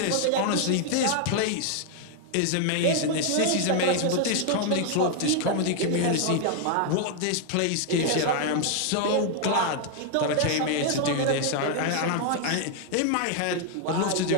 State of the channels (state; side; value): different; both; correlation 0.00